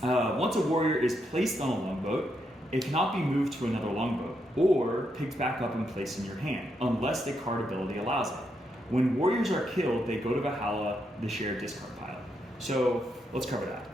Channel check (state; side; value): normal; both; correlation 0.80